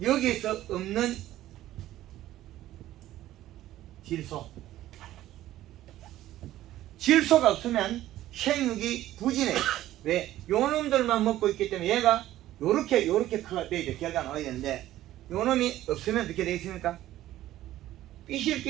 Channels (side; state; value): left; quieter; 14.1 dB